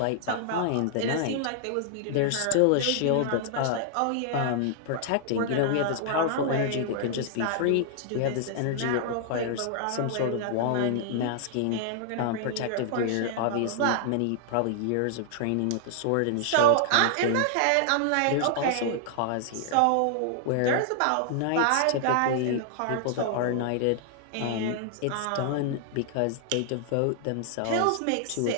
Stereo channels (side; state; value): both; different; correlation -0.01